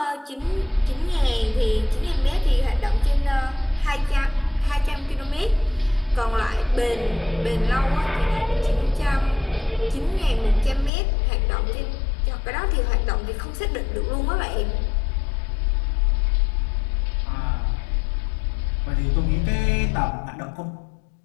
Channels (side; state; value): right; drops out; at 10.9 s